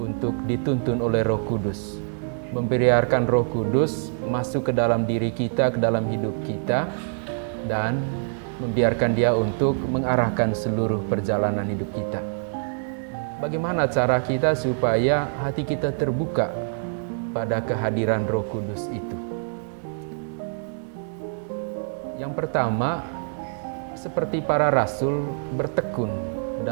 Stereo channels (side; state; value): left; silent; 62 dB below the other